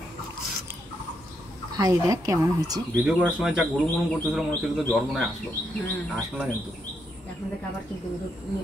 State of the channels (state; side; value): normal; both; correlation 0.79